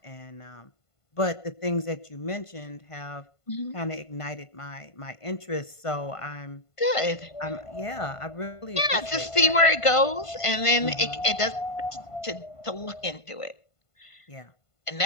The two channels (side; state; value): right; late; 1.5 ms